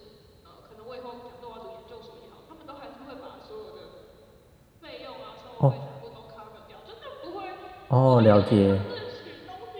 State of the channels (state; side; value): identical; both; correlation 1.00